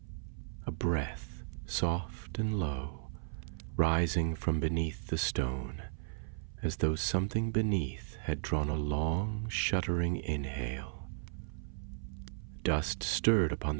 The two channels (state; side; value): silent; left; 54 dB below the other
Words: A breath, soft and low, rising from beneath the stone, as though something beneath had drawn a long, shuddering inhale. Dust stirred upon